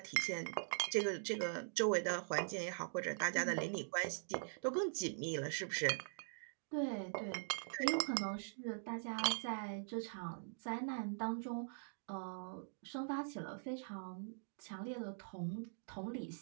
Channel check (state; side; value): silent; left; digital silence